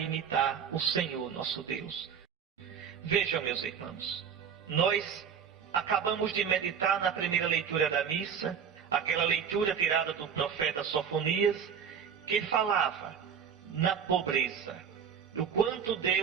o Senhor nosso Deus. Vejam, meus irmãos, nós acabamos de meditar na primeira leitura da missa, aquela leitura tirada do profeta Sofonias, que falava na pobreza, o quanto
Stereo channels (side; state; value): left; quieter; 7.4 dB